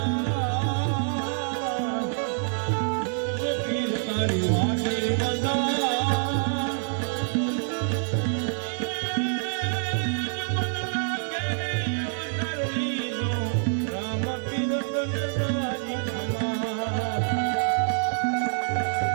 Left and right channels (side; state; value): left; silent; digital silence